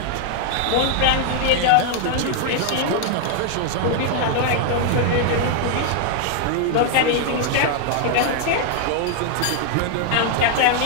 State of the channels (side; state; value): both; different; correlation 0.00